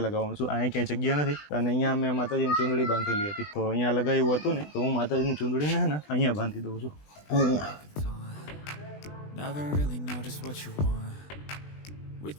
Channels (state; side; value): late; right; 20 ms